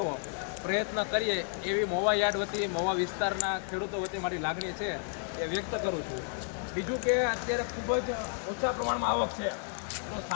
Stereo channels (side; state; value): right; silent; 57 dB below the other